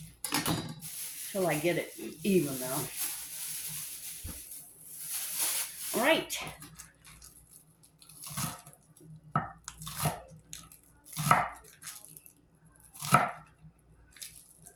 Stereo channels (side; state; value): both; identical; correlation 1.00